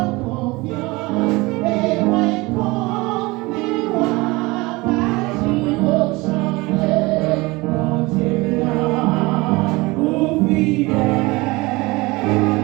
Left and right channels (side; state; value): left; quieter; 22.9 dB